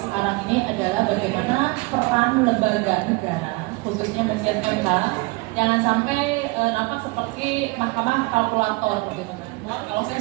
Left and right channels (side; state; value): left; quieter; 24.9 dB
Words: ini adalah bagaimana peran lembaga negara, khususnya bagian MK, jangan sampai nampak seperti mahkamah kalkulator gitu kan. Kalau saya